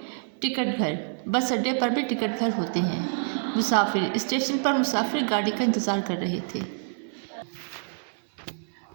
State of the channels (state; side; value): silent; left; digital silence